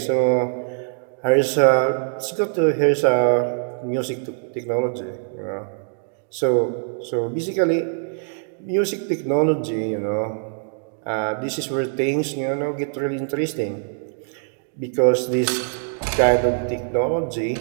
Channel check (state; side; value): silent; left; digital silence